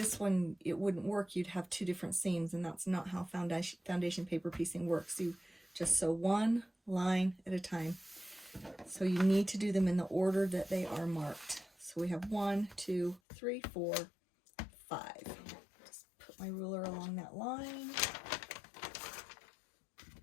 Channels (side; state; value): right; drops out; at 13.2 s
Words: one, it wouldn't work. You'd have 2 different seams, and that's not how foundation paper piecing works. You just sew one line at a time. So you need to do them in the order that they are marked. So we have 1, 2, 3, 4, 5. Just put my ruler along that line.